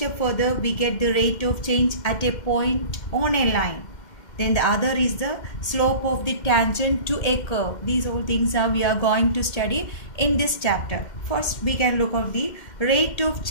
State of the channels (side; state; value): right; late; 2.1 ms